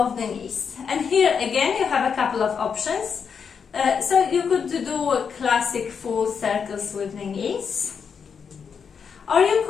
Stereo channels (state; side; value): quieter; right; 6.5 dB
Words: the knees. And here again you have a couple of options. So you could do classic full circles with the knees, or you